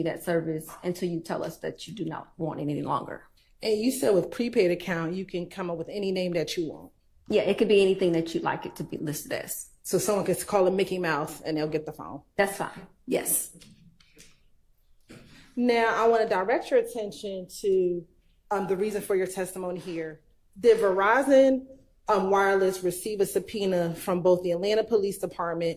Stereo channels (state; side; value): identical; both; correlation 1.00